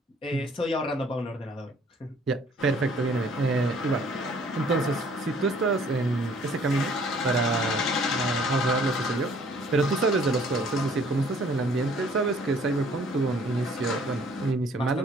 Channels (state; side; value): normal; both; correlation 0.58